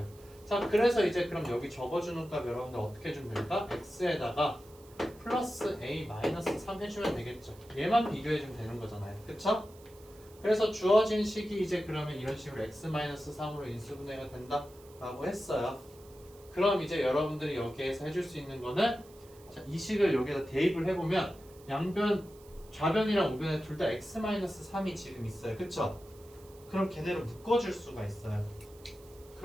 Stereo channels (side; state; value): right; noise; hiss, 25 dB below the sound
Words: 자, 그래서 이제 그럼 여기 적어주는 값 여러분들 어떻게 해주면 될까? x에다가 플러스 a-3 해주면 되겠죠. 얘만 비교해주면 되는 거잖아요. 그쵸? 그래서 주어진 식이 이제 그러면 이런 식으로 x-3으로 인수분해가 된다 라고 했어요. 그럼 이제 여러분들이 여기에서 해줄 수 있는 거는 자, 이 식을 여기다 대입을 해보면 양변, 좌변이랑 우변에 둘 다 x-3이 지금 있어요. 그쵸? 그럼 걔네를 묶어줄 수가 있어요.